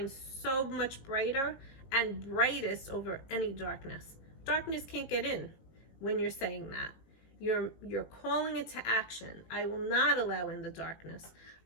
so much brighter and brightest over any darkness. Darkness can't get in when you're saying that. You're calling it to action. I will not allow in the darkness.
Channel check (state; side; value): late; right; 18 ms